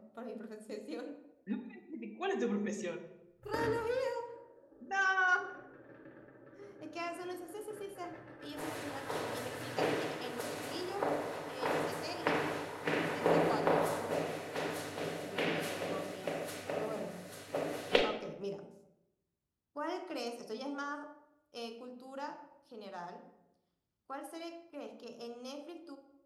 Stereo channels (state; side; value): identical; both; correlation 1.00